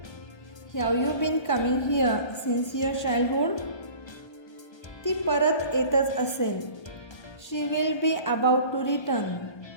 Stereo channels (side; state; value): right; late; 1.3 ms